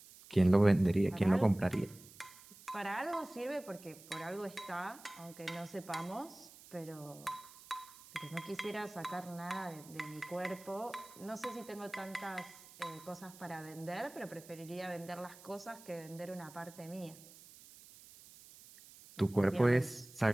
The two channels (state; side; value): noise; right; hiss, 20 dB below the sound